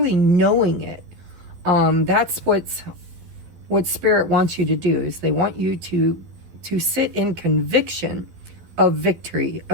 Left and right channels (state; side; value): late; left; 12 ms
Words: knowing it, that's what Spirit wants you to do. Is they want you to sit in conviction of victory,